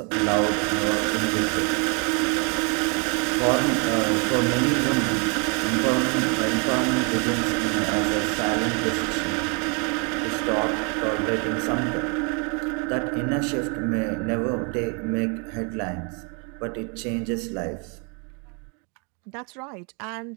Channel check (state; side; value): quieter; left; 35.1 dB